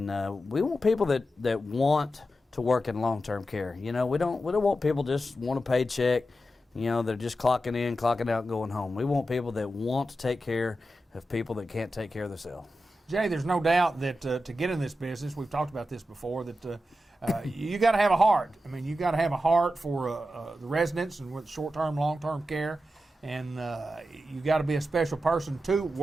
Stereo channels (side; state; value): both; normal; correlation 0.90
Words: we want people that want to work in long-term care. We don't want people just want a paycheck. They're just clocking in, clocking out, and going home. We want people that want to take care of people that can't take care of themselves. Jay, there's no doubt that to get in this business, we've talked about this before, that you got to have a heart. I mean, you got to have a heart for the residents and with short-term, long-term care, and you got to be a special person to